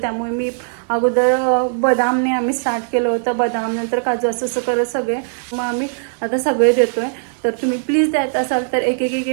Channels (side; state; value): left; silent; 67 dB below the other